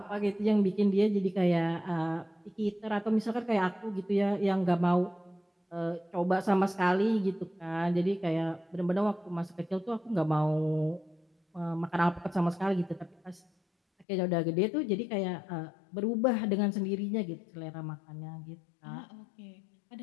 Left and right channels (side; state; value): right; drops out; at 14.1 s